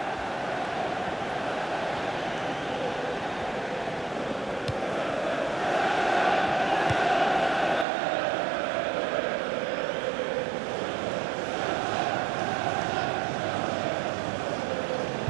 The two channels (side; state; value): left; drops out; at 7.9 s